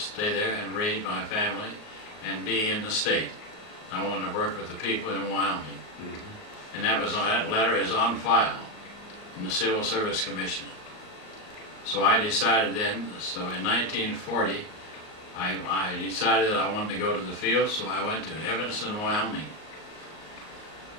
there and raise my family and be in the state. I wanted to work with the people in Wyoming. And that letter is on file in the Civil Service Commission. So I decided then, so in 1940, I decided that I wanted to go to the field, so I went to Evanston, Wyoming,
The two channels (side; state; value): right; late; 38 ms